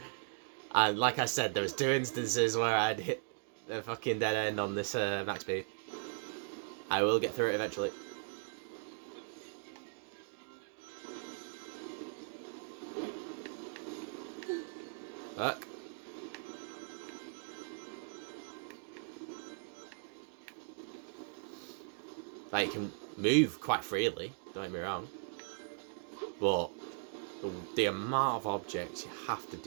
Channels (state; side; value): silent; left; digital silence